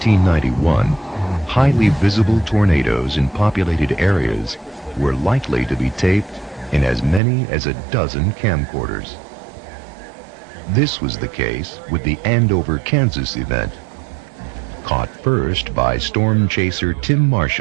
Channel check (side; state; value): left; drops out; at 7.2 s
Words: highly visible tornadoes in populated areas were likely to be taped in as many as a dozen camcorders. This was the case with the Andover, Kansas event. Caught first by storm chaser Tim